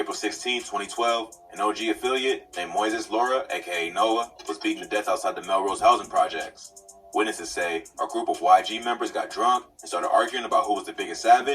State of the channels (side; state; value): both; identical; correlation 1.00